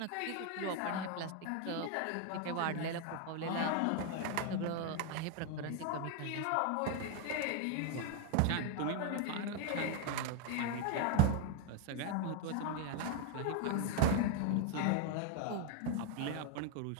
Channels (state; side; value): different; both; correlation 0.01